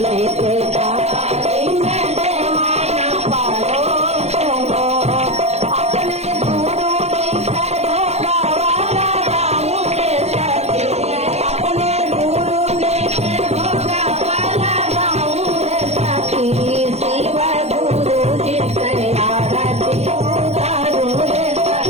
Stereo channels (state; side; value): late; left; 0.31 ms